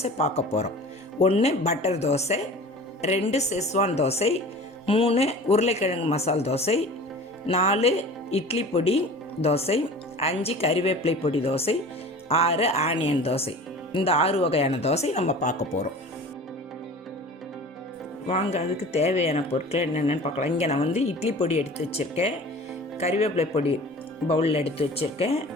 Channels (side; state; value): both; normal; correlation 0.40